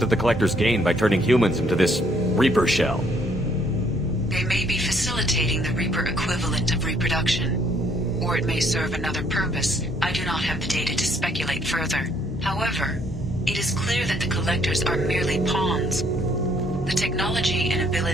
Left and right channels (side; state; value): both; normal; correlation 0.66